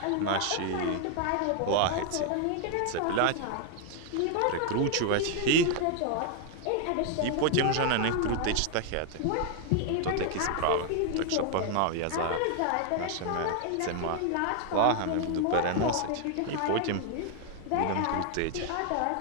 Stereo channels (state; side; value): different; both; correlation 0.00